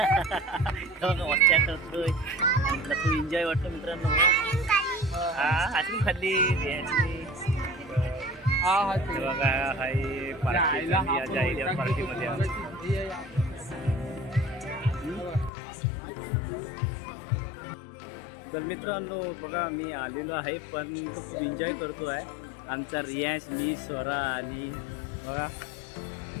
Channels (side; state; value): right; drops out; at 15.5 s